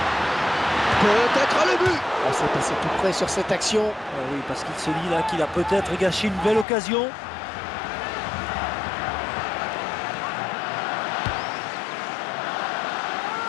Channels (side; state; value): right; drops out; at 6.7 s